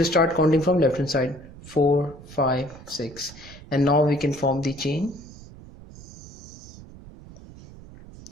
start counting from left hand side, 4, 5, 6, and now we can form the chain.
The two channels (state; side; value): noise; right; rumble, 18 dB below the sound